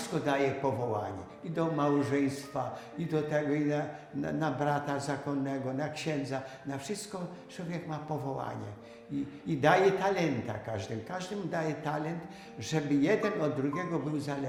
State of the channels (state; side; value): identical; both; correlation 1.00